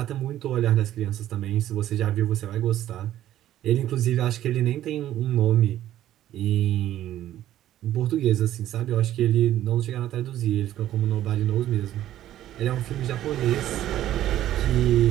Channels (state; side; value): quieter; left; 12.8 dB